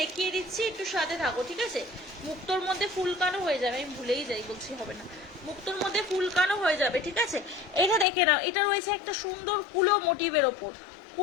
দেখিয়ে দিচ্ছি, একটু সাথে থাকো, ঠিক আছে? মুক্তোর মধ্যে ফুলকানও হয়ে যাবে, আমি ভুলেই যাই, বলছি হবে না। মুক্তোর মধ্যে ফুলকানও হয়ে যাবে, ঠিক আছে? এটা দেখে নাও, এটা রয়েছে একটা সুন্দর কুলো মোটিভের ওপর,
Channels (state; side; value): drops out; right; at 8.1 s